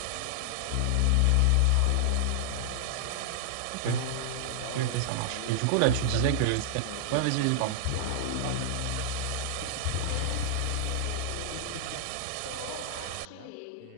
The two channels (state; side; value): different; both; correlation 0.00